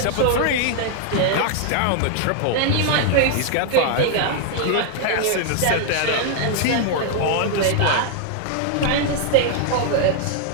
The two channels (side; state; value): both; different; correlation 0.00